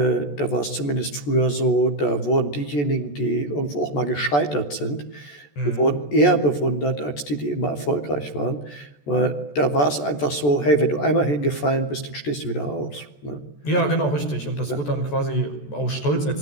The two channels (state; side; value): late; right; 14 ms